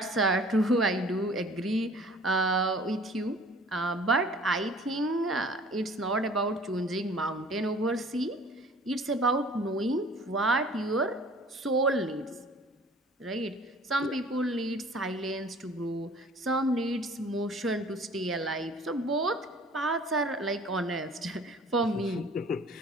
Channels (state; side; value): normal; both; correlation 0.50